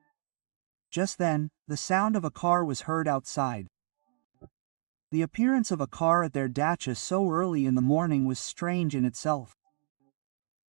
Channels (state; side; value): silent; left; digital silence